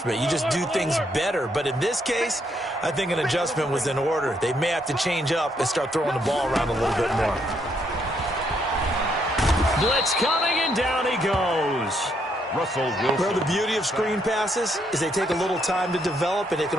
You just do things better. But in this case, I think an adjustment was in order. They may have to change up and start throwing the ball around a little bit more. Blitz coming, and down he goes. Russell Wilson. Well, the beauty of screen passes is they take a little time to develop, and they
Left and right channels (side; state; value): both; normal; correlation 0.73